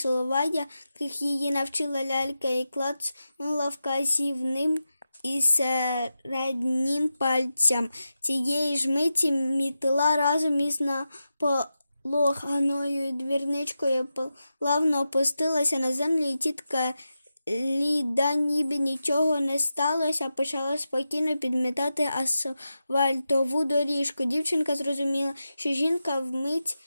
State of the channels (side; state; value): both; inverted; correlation -0.90